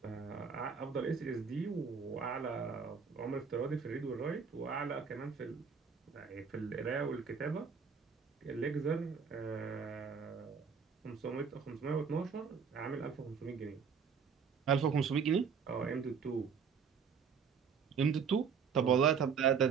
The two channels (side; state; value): left; quieter; 6.2 dB